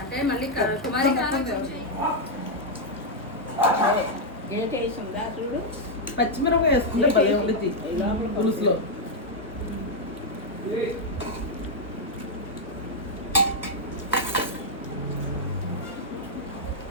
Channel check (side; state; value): both; normal; correlation -0.02